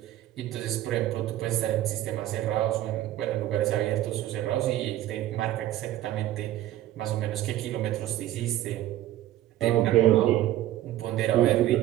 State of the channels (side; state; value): left; quieter; 13.7 dB